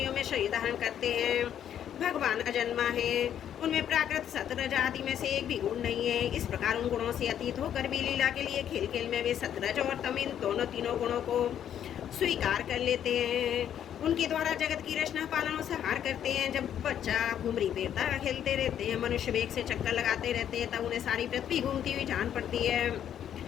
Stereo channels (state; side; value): quieter; right; 9.8 dB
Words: में शरीर धारण करते हैं। भगवान अजन्मा है, उनमें प्राकृत सतरज आदि में से एक भी गुण नहीं है। इस प्रकार उन गुणों से अतीत होकर भी लीला के लिए खेल खेल में वे सतरज और तम इन दोनों तीनों गुणों को स्वीकार कर लेते हैं। उनके द्वारा जगत की रचना पालन और संहार करते हैं। जब बच्चा घुमरी बेरता खेलते रहते हैं, मनुष्य वेग से चक्कर लगाते रहते हैं, तब उन्हें सारी पृथ्वी घूमती हुई जान पड़ती है।